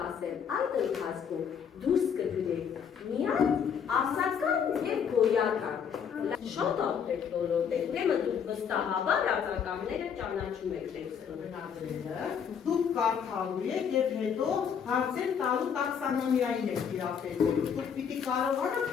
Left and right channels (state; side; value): quieter; right; 7.4 dB